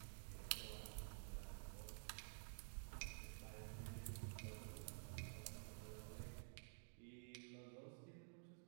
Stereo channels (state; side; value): silent; left; digital silence